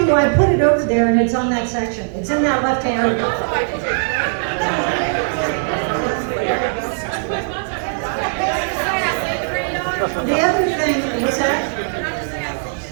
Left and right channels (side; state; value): left; silent; digital silence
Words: you I put it over there and it's on that section. It's in that left hand. The other thing, what's that?